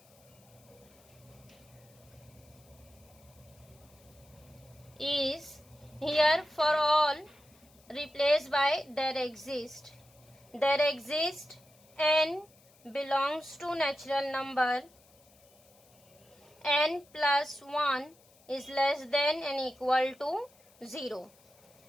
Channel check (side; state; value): left; noise; hiss, 28 dB below the sound